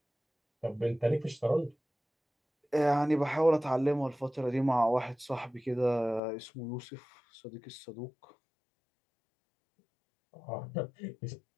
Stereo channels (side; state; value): right; drops out; at 6.2 s